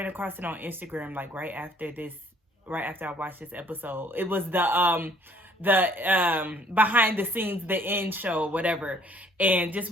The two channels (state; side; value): normal; both; correlation 0.60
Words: across it on Instagram like right after I watched this episode. It was the behind the scenes, the end show, whatever. And just